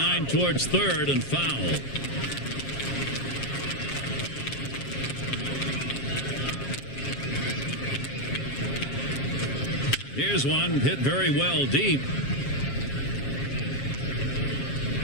towards third and foul. Here's one hit very well deep.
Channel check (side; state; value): right; late; 7.4 ms